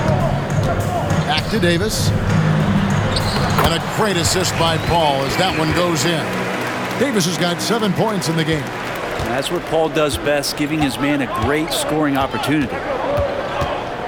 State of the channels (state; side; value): identical; both; correlation 1.00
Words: Back to Davis. And a great assist by Paul as that one goes in. Davis has got 7 points in the game. And that's what Paul does best, giving his man a great scoring opportunity.